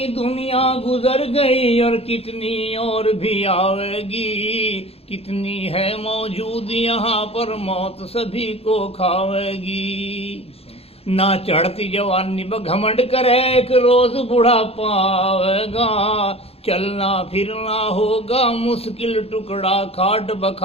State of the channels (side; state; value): right; late; 0.29 ms